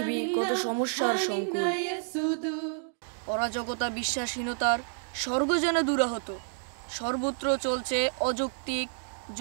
কত সমস্যার সংকুল। অরাজকতা, বিশ্বাসহীনতার স্বর্গ যেন দুরাহত। সর্বত্র চলছে অযৌক্তিক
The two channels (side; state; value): left; silent; digital silence